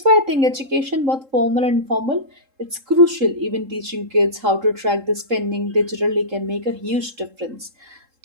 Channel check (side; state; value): left; late; 3.7 ms